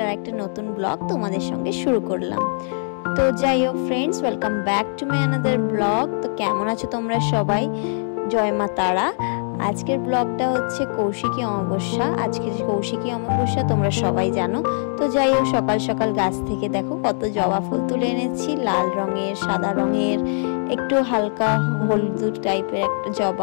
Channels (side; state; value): right; silent; digital silence